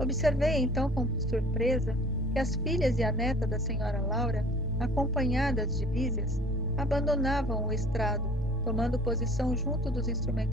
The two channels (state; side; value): normal; both; correlation 0.49